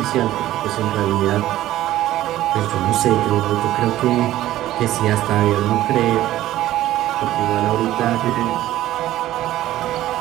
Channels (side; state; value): left; quieter; 14.4 dB